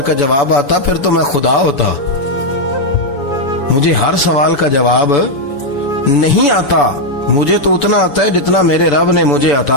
کا جواب آتا پھر تو میں خدا ہوتا. مجھے ہر سوال کا جواب نہیں آتا، مجھے تو اتنا آتا ہے جتنا میرے رب نے مجھے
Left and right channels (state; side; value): late; right; 7.0 ms